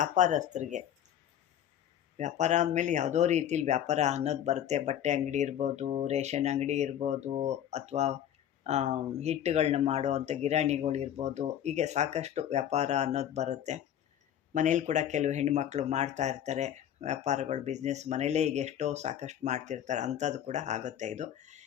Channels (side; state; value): right; quieter; 10.4 dB